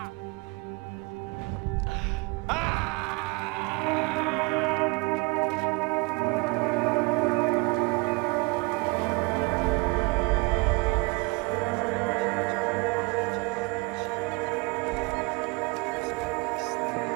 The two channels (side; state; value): left; quieter; 27.0 dB